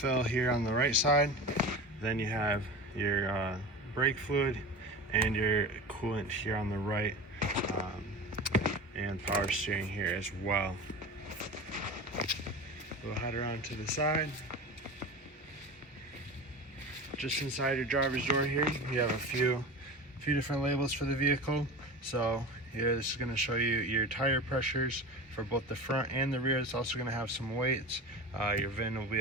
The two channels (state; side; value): normal; both; correlation 0.31